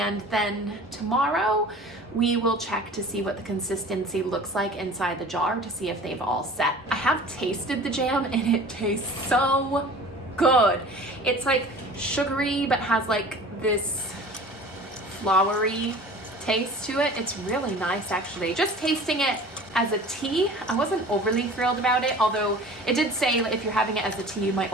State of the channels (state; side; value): normal; both; correlation 0.42